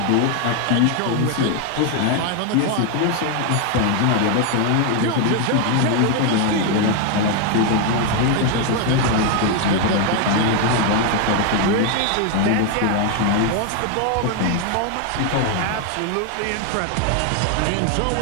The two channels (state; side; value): different; both; correlation 0.01